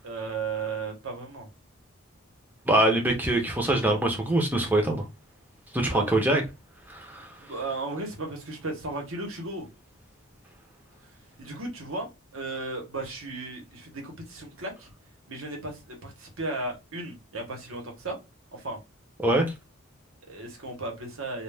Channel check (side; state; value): both; normal; correlation 0.47